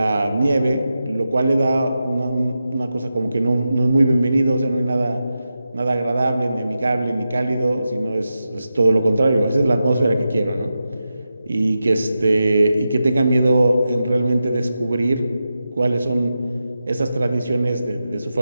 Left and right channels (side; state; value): both; inverted; correlation -0.90